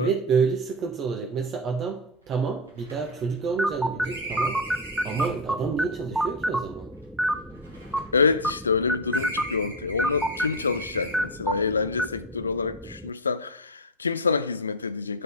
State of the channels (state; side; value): normal; both; correlation 0.08